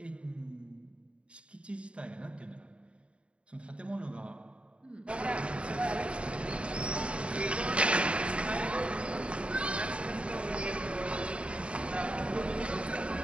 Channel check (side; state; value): left; late; 0.059 ms